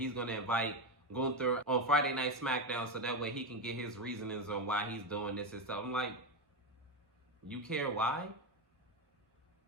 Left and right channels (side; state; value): both; normal; correlation 0.12